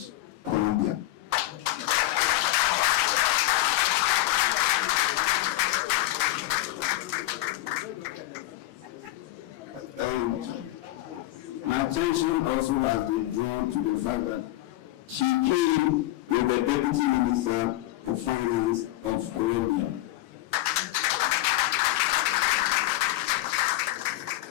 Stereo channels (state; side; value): quieter; right; 16.7 dB